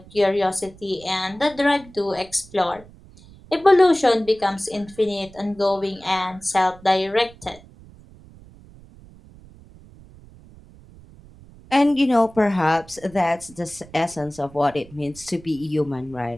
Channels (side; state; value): right; noise; rumble, 22 dB below the sound